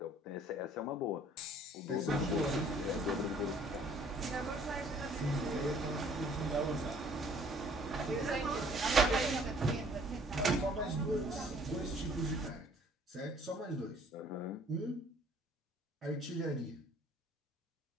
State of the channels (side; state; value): both; normal; correlation 0.57